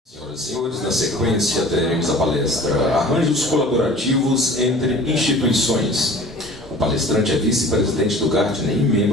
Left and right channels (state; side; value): normal; both; correlation 0.44